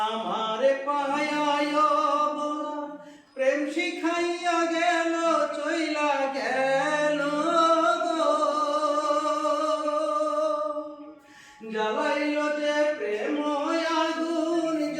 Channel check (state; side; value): identical; both; correlation 1.00